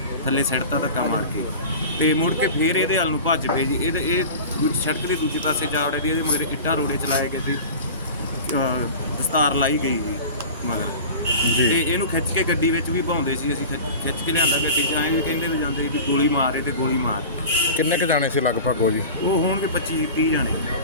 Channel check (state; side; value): inverted; both; correlation -0.35